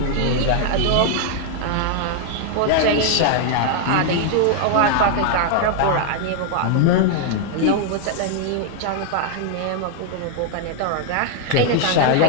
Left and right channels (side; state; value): both; different; correlation 0.00